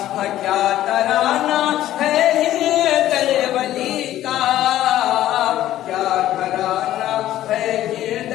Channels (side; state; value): right; quieter; 13.4 dB